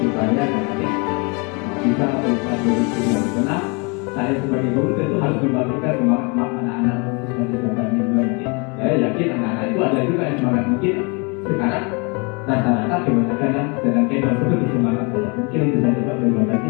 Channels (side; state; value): right; quieter; 31.7 dB